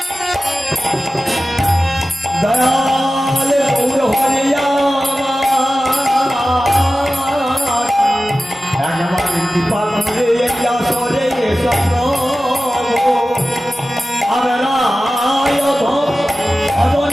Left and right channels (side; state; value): both; normal; correlation 0.95